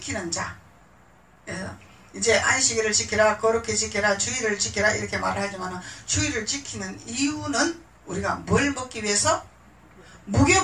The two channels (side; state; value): both; identical; correlation 1.00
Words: 자, 이제 안식일을 지키라, 거룩히 지키라, 주일을 지키라 이렇게 말을 하지만 주일을 지키는 이유는 우리가 뭘 먹기 위해서?